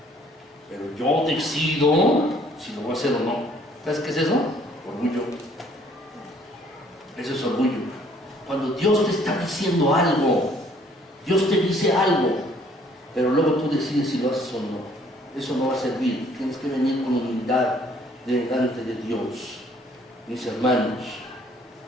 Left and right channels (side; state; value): both; normal; correlation 0.61